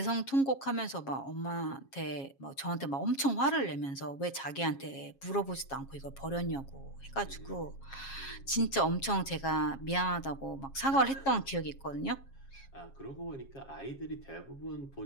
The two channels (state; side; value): late; right; 7.3 ms